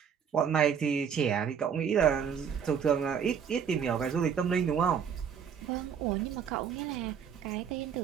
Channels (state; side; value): quieter; left; 7.5 dB